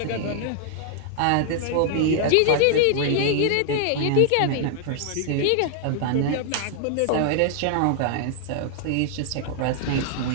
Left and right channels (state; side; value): different; both; correlation -0.01